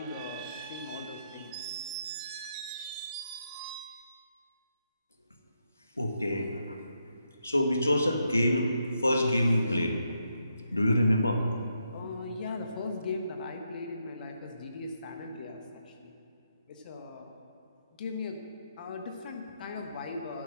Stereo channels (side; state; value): both; inverted; correlation -0.80